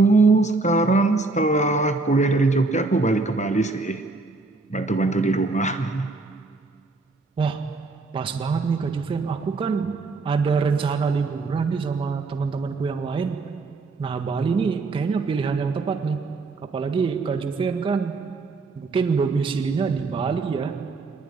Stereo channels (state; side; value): quieter; left; 3.7 dB